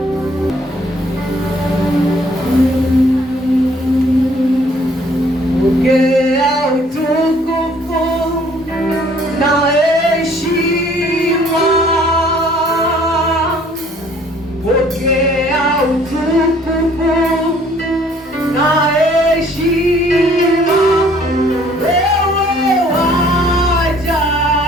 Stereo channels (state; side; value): normal; both; correlation 0.59